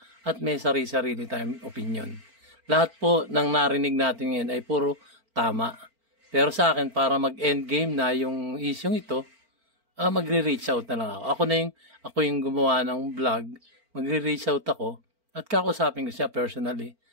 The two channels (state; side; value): late; left; 4.4 ms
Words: at may sarili-sarili tayong opinion. Lahat po ng narinig natin ngayon ay puro tama. Pero sa akin, para mag-endgame na yung isyong ito, magre-reach out na lang ako. Ako yung gumawa ng vlog, magre-reach out ako at kakusapin ko siya personally